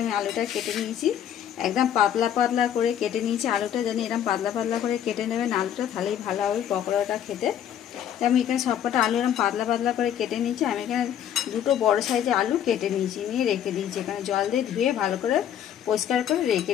আমি আলুটা কেটে নিয়েছি। একদম পাতলা পাতলা করে কেটে নিয়েছি আলুটা, জানি এরকম পাতলা পাতলা করে কেটে নেবেন আলুটা, তাহলেই ভালো হবে পকোড়াটা খেতে। তাই আমি এখানে সবকটা আলু এরকম পাতলা পাতলা করে কেটে নিয়েছি। আমি এখানে দুটো বড় সাইজের আলু কেটে নিয়েছি, নিয়ে রেখে দিয়েছি এখানে জল দিয়ে ধুয়ে ভালো করে পরিষ্কার করে রেখে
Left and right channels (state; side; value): quieter; right; 9.9 dB